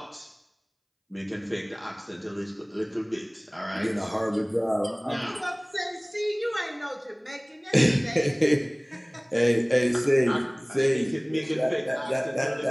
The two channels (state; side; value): identical; both; correlation 1.00